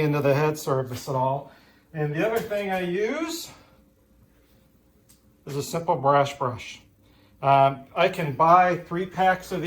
the head surface at all. And the other thing I use is a simple brush. I can buy 3 packs of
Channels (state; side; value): identical; both; correlation 1.00